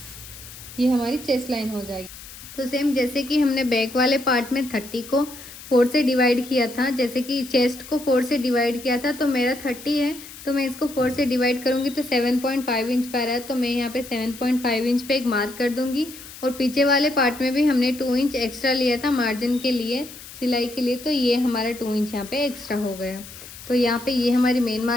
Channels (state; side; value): noise; left; hiss, 16 dB below the sound